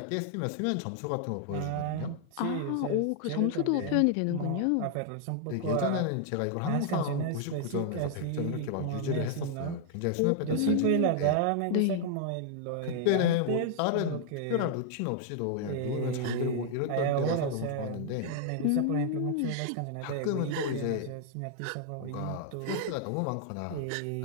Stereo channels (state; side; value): different; both; correlation 0.00